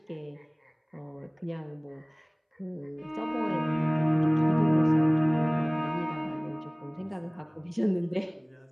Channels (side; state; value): both; identical; correlation 1.00